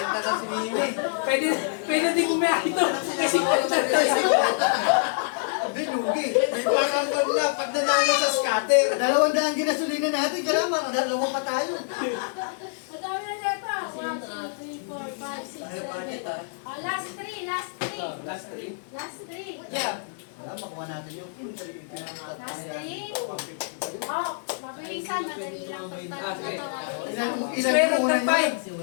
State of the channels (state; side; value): silent; right; 61 dB below the other